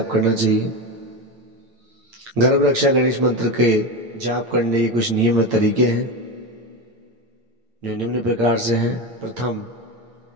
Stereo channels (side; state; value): left; late; 8.8 ms